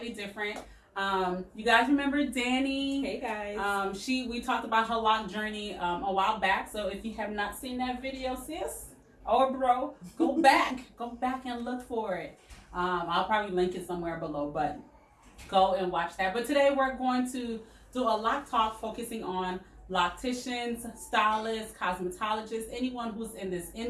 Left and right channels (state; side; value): identical; both; correlation 1.00